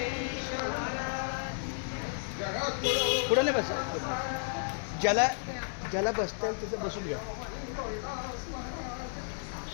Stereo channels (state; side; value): silent; right; digital silence